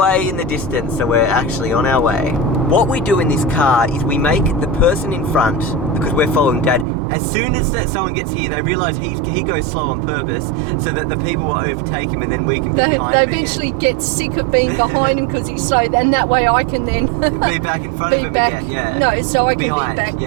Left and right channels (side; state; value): left; drops out; at 6.9 s